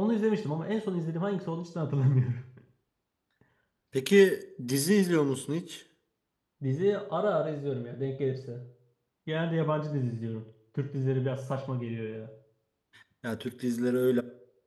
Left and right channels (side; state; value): both; identical; correlation 1.00